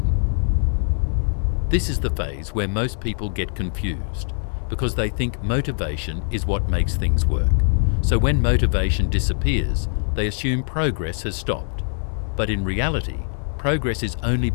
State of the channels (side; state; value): right; silent; digital silence